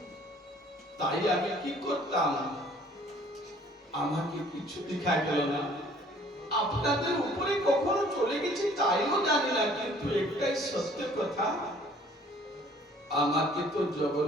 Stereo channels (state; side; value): normal; both; correlation 0.56